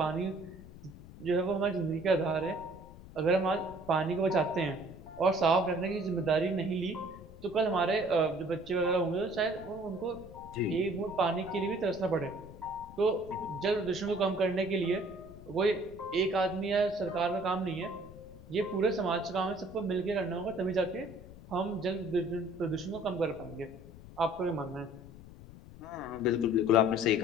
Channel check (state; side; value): noise; left; rumble, 17 dB below the sound